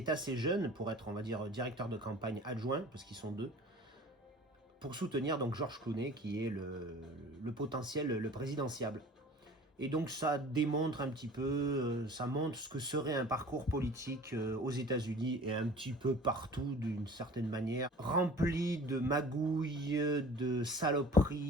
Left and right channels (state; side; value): normal; both; correlation 0.45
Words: assez jeune pour être, on va dire, directeur de campagne adjoint, parce qu'ils sont deux, pour soutenir donc George Clooney, qui est le potentiel, le présidentiable. Et donc ça démontre un petit peu, ça montre ce que serait un parcours politique aux États-Unis et un petit peu partout d'une certaine manière, rempli de magouilles, de